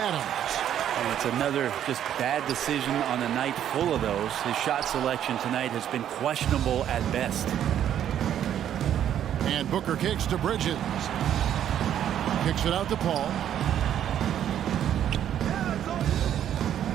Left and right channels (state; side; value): quieter; left; 10.3 dB